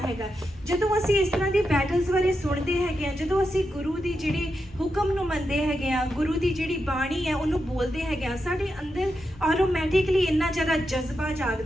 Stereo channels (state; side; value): normal; both; correlation 0.87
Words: ਹੈਗਾ। ਜਦੋਂ ਅਸੀਂ ਇਸ ਤਰ੍ਹਾਂ ਦੀ ਬੈਟਲਸ ਬਾਰੇ ਸੁਣਦੇ ਹੈਗੇ ਆ, ਜਦੋਂ ਅਸੀਂ ਗੁਰੂ ਦੀ ਜਿਹੜੀ ਹੁਕਮ ਨੂੰ ਮੰਨਦੇ ਹੈਗੇ ਆ, ਗੁਰੂ ਦੀ ਜਿਹੜੀ ਬਾਣੀ ਹੈ ਉਹਨੂੰ ਬੋਲਦੇ ਹੈਗੇ ਆ, ਸਾਡੇ ਅੰਦਰ ਆਟੋਮੈਟਿਕਲੀ ਇੰਨਾ ਜ਼ਿਆਦਾ ਜਜ਼ਬਾ